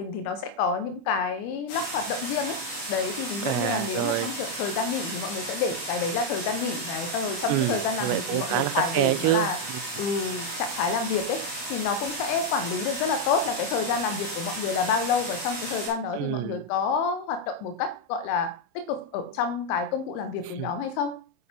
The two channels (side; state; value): right; late; 25 ms